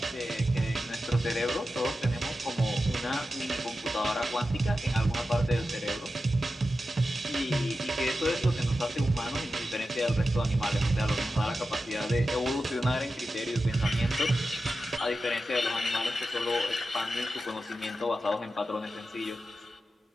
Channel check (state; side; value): normal; both; correlation 0.92